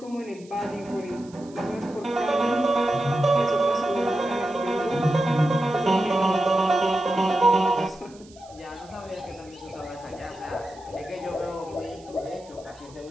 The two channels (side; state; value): right; noise; hiss, 25 dB below the sound